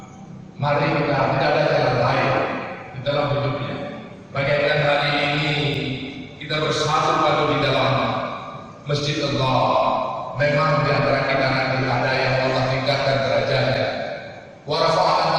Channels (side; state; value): both; identical; correlation 1.00